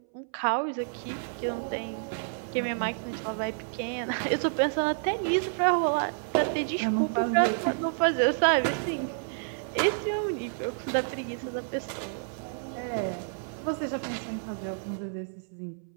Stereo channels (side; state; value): left; silent; 58 dB below the other